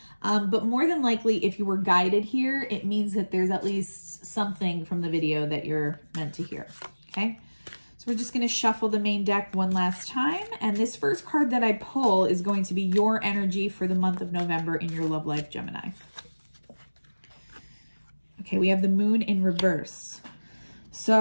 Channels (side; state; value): both; inverted; correlation -1.00